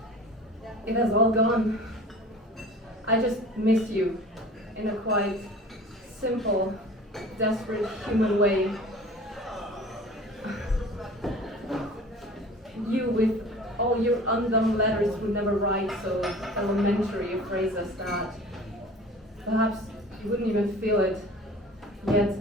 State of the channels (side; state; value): both; normal; correlation 0.42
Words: it has all gone. I just miss you in a quite simple, desperate human way. You with all your undone letters would never write so elementary a phrase as that. Perhaps you wouldn't even feel it, yet